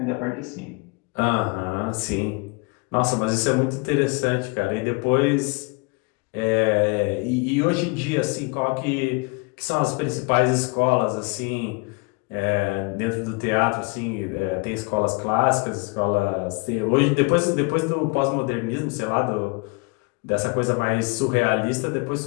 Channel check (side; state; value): right; quieter; 29.6 dB